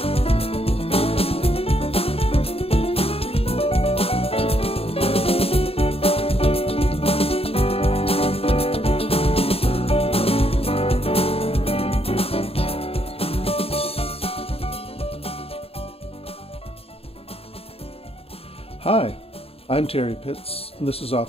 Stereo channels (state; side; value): late; right; 0.28 ms